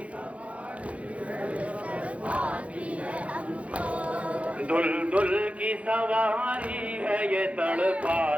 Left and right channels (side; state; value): left; late; 0.064 ms